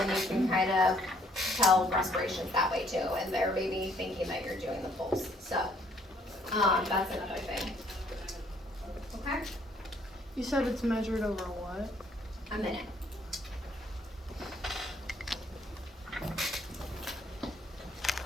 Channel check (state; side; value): normal; both; correlation 0.65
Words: and you can kind of tell respirations that way too, and they're maybe thinking that you're doing the pulse. So, that's another thing. Okay? You said it's measured over what? A minute.